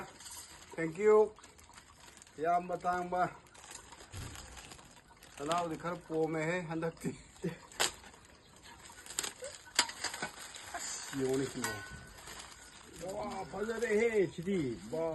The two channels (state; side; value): identical; both; correlation 1.00